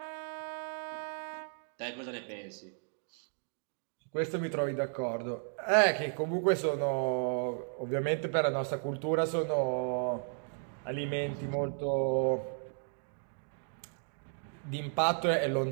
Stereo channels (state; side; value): silent; left; 55 dB below the other